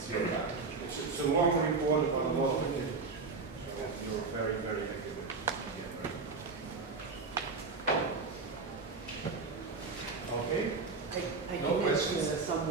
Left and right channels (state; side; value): quieter; left; 4.3 dB